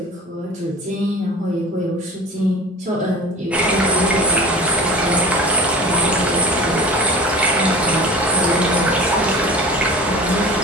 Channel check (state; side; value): normal; both; correlation 0.38